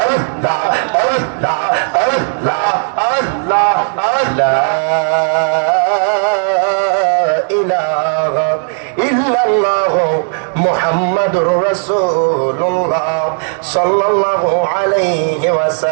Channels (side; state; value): left; silent; digital silence